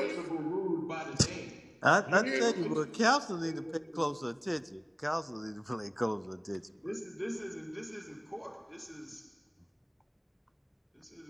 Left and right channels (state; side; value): identical; both; correlation 1.00